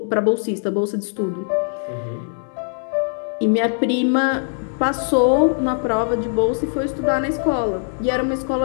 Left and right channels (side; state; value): right; silent; digital silence